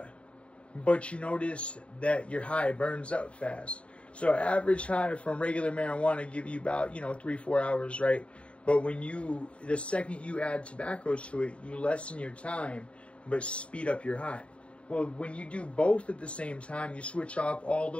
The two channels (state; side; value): late; right; 0.060 ms